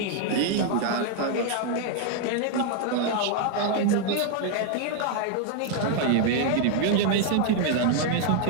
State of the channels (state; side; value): different; both; correlation 0.00